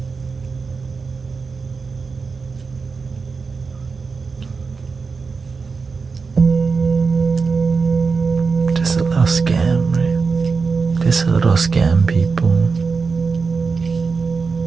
Just a little will scam people.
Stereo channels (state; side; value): quieter; left; 4.8 dB